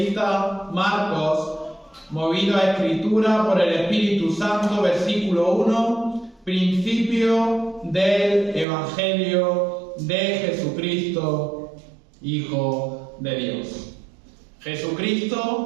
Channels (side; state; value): left; drops out; at 8.7 s